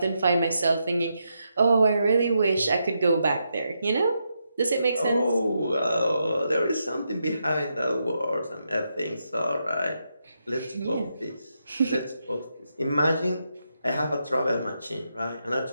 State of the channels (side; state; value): both; inverted; correlation -0.83